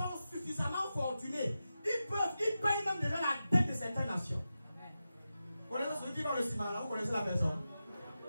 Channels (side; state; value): both; inverted; correlation -0.92